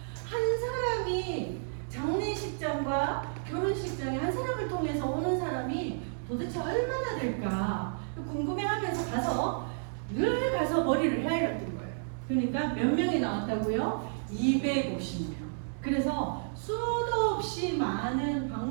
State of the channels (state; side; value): silent; left; 57 dB below the other